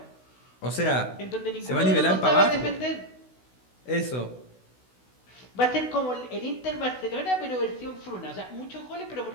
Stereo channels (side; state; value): right; late; 16 ms